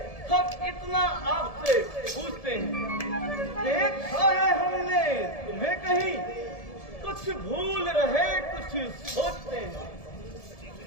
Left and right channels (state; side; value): late; right; 1.7 ms